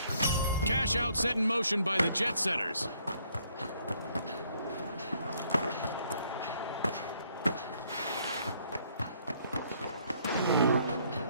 Cash out set in motion by the Jet Setters.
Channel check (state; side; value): inverted; both; correlation -0.67